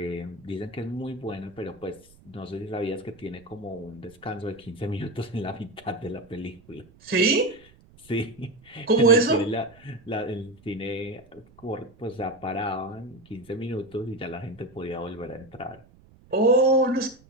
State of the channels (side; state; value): right; noise; rumble, 26 dB below the sound